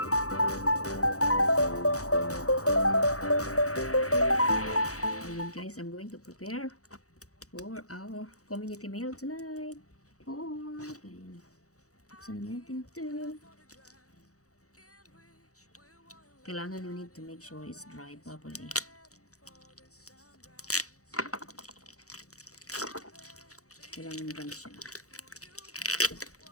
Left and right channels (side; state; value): right; late; 0.65 ms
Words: Ayan guys, I'm going to prepare for our community meal tonight. Ayan. Buksan na natin ito. Kailangan you need to make sure it's dry properly. Kailangan dry siya.